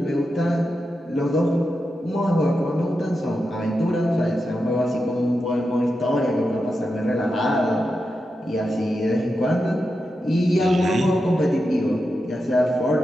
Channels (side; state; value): both; normal; correlation 0.88